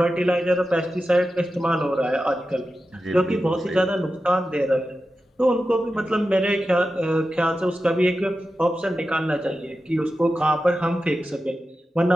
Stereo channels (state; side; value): normal; both; correlation 0.92